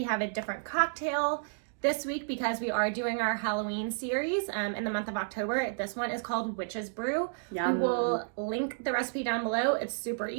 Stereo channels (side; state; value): left; silent; digital silence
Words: have a different cocktail. This week, because we are doing our Halloween series in the month of October, this one is called Witch's Brew. Yum. We will link the recipe down below. It's super